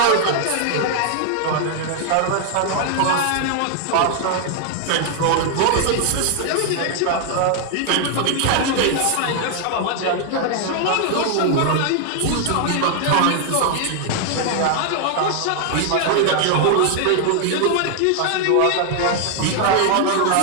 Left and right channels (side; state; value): both; different; correlation 0.00